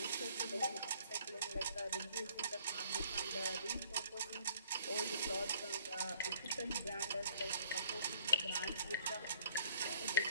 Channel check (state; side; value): inverted; both; correlation -0.59